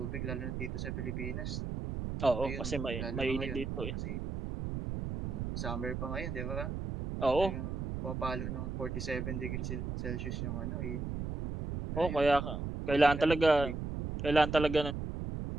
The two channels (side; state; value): right; noise; rumble, 4 dB below the sound